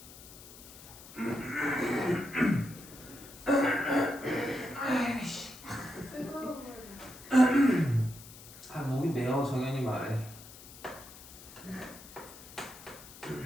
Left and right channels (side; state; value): left; noise; hiss, 17 dB below the sound